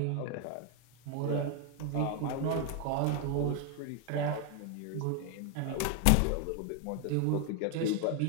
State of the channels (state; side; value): different; both; correlation 0.01